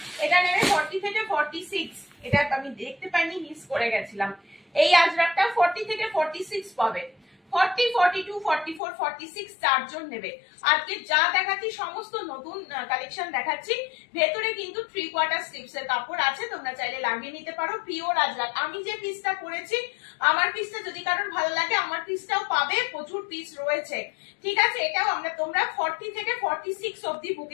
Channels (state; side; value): drops out; right; at 8.8 s